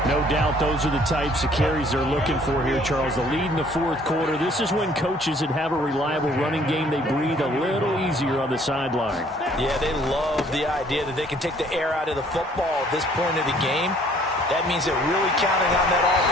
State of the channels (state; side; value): normal; both; correlation 0.59